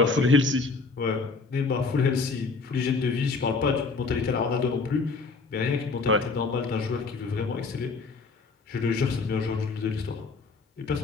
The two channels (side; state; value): right; quieter; 4.3 dB